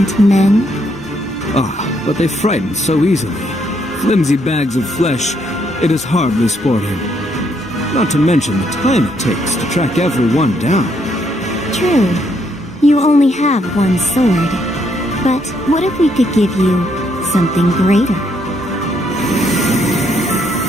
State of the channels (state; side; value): normal; both; correlation 0.73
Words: men? Ah, but they frighten so easily. Flimsy bags of flesh, it is hardly sporting. Not to mention the time it takes to track everyone down. True. You only have one sword. But what if we could give you something greater?